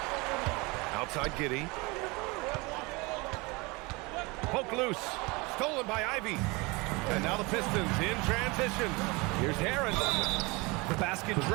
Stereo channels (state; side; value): quieter; left; 25.8 dB